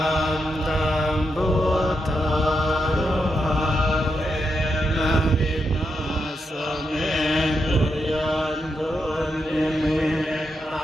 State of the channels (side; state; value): both; normal; correlation 0.84